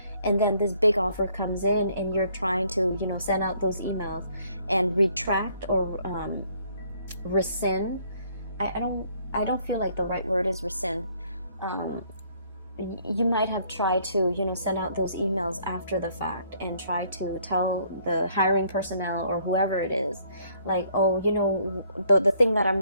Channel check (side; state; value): both; inverted; correlation -0.64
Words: and then this big offer comes in, and you're trying to, you know, send out those emails and retract or rescind. I don't feel like the right word is rescind. You might have tried to, you know, send out those emails after the fact and try to tell the hiring personnel or whoever it is, like, oh, you know, the thing that I'm